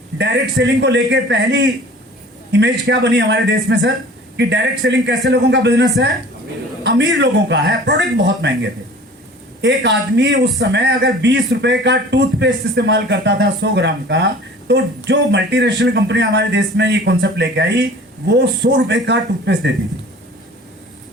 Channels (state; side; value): normal; both; correlation 0.45